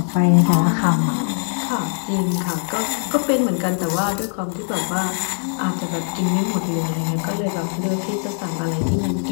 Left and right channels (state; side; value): silent; right; 64 dB below the other